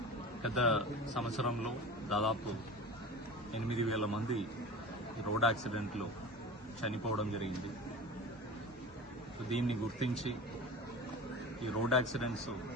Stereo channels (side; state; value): both; normal; correlation 0.34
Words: గత సంవత్సరంలో దాదాపు 8,000 మంది రోడ్ యాక్సిడెంట్లో చనిపోవడం జరిగింది. దీన్ని గుర్తించి ఈ రోడ్ యాక్సిడెంట్స్